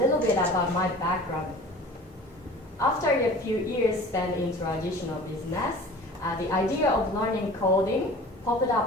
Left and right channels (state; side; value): normal; both; correlation 0.43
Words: bit about my background. After a few years spent in traditional business, the idea of learning coding popped